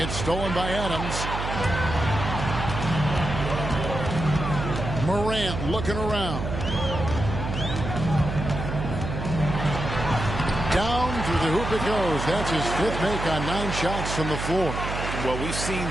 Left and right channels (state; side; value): noise; right; hum, 5 dB below the sound